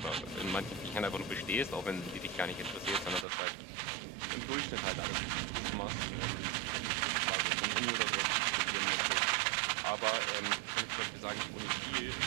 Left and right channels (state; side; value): drops out; left; at 3.2 s